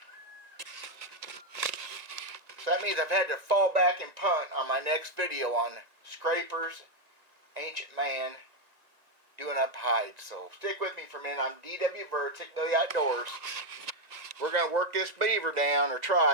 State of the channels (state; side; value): late; left; 1.9 ms